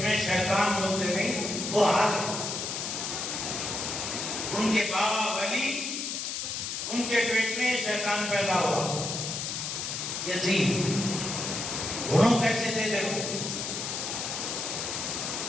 میں شیطان، بولتے نہیں وہ حال ہے. ان کے بابا ولی، ان کے پیٹ میں شیطان پیدا ہوا یزید. انہوں کیسے تھے دیکھو،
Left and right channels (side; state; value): left; noise; hiss, 3 dB below the sound